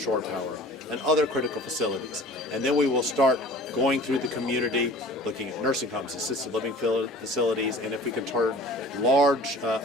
power and other critical facilities. And then we will start going through the community, looking at nursing homes, assisted living facilities, and if we can turn large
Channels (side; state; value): both; normal; correlation 0.44